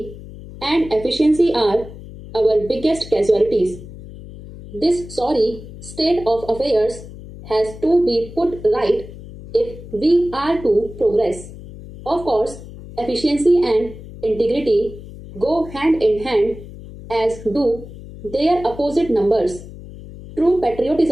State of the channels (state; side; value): noise; left; hum, 15 dB below the sound